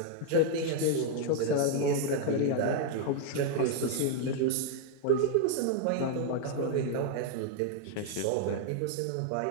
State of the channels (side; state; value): both; different; correlation 0.00